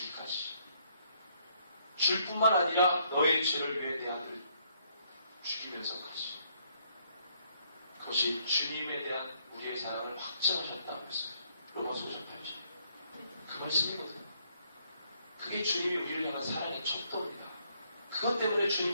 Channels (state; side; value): inverted; both; correlation -0.70